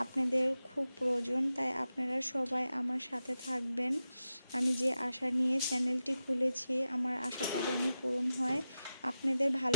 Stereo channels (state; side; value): inverted; both; correlation -0.91